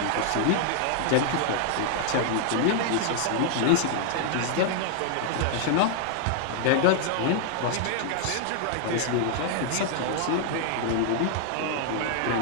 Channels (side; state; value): both; different; correlation 0.00